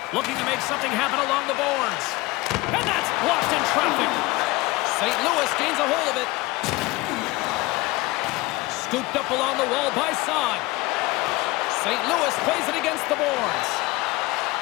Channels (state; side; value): quieter; right; 21.3 dB